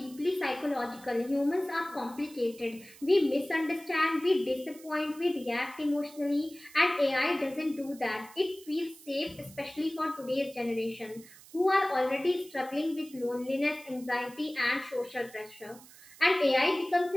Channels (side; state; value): right; noise; hiss, 21 dB below the sound